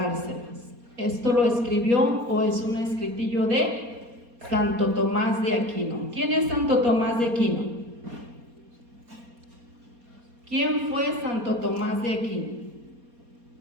Esto lo escribió, o es un escritillo de Santo Tomás de Aquino. ¿Quién es Santo Tomás de Aquino? ¿Quién fue Santo Tomás de Aquino?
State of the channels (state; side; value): late; left; 4.2 ms